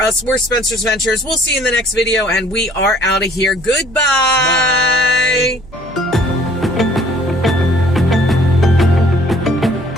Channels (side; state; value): right; noise; hum, 21 dB below the sound